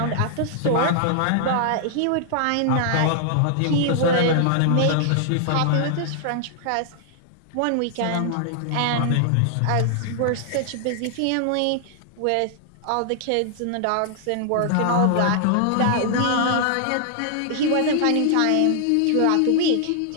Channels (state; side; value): different; both; correlation -0.01